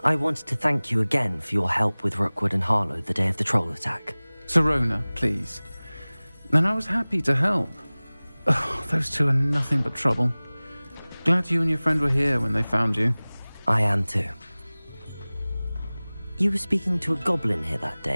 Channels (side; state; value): both; inverted; correlation -0.99